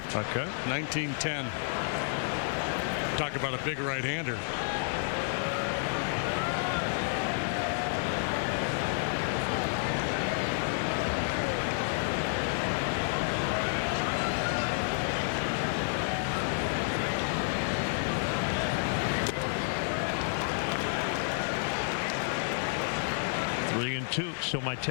Okay. 1910. Talk about a big right-hander. So my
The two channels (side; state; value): right; silent; 58 dB below the other